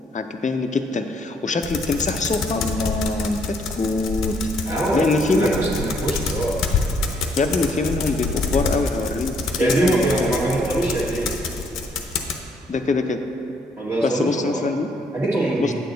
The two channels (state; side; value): normal; both; correlation 0.68